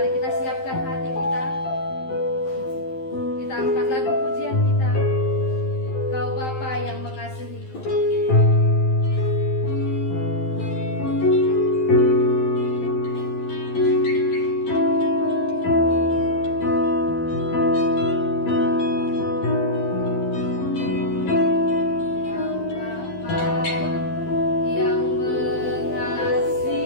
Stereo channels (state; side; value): late; right; 12 ms